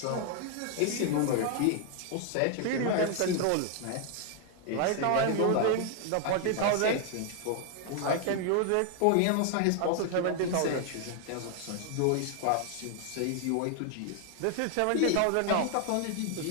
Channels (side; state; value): both; different; correlation 0.00